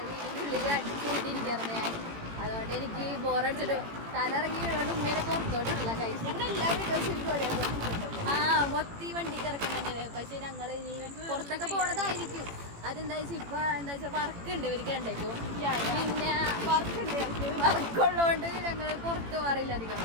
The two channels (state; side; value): late; left; 18 ms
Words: വീടിൻ്റെ ഉള്ളിൽ അടിച്ചുകൊണ്ടിരിക്കുകയായിരുന്നു ഞാൻ. അതുകൊണ്ട് എനിക്ക് ബോറടിച്ചിട്ട് തലയിറങ്ങി വീണോണ്ട് ഉമ്മേനെ പുറത്തോട്ടില്ല കഴിച്ചു. ആ മൊത്തി വണ്ടി കിടക്കുന്നുണ്ട്. പക്ഷെ ഞങ്ങൾ ഇനി പുറത്തൊക്കെ പോണതായിരിക്കും. അതെന്താ വെച്ചാൽ ഇപ്പൊ എന്താ വെച്ചാൽ വർക്ക് ഉണ്ട് ഇവർക്ക് രണ്ടേക്കും. പിന്നെ വർക്കുള്ളതുകൊണ്ട് ഞങ്ങൾ പുറത്ത് മാറില്ല അധികം.